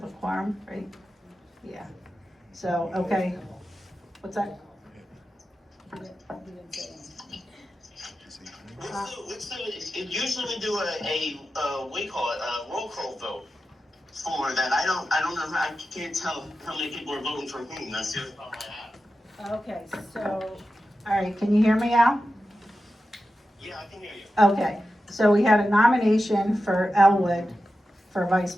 a quorum, right? Yeah, so, okay, what's that? Usually we do we call it a roll call vote for that. I don't know, I can't tell how many people are voting for whom. That's the other problem I have. Okay, so, all right, can you hear me, Al? Yeah, I can hear you. Okay, so we had a nomination for Elwood for vice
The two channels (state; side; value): normal; both; correlation 0.92